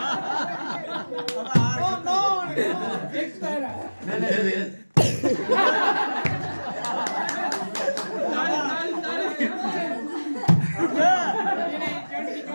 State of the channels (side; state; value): both; inverted; correlation -1.00